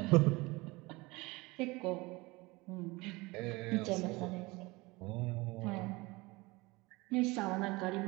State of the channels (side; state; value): left; quieter; 23.1 dB